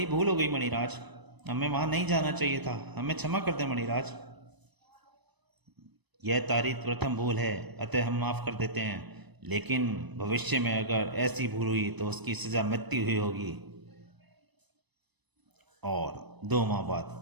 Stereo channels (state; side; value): late; left; 1.0 ms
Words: भूल हो गई मणिराज, हमें वहां नहीं जाना चाहिए था, हमें क्षमा कर दे मणिराज। यह तारीफ प्रथम भूल है, अतः हम माफ कर देते हैं, लेकिन भविष्य में अगर ऐसी भूल हुई तो उसकी सजा मृत्यु हुई होगी। और 2 माह बाद।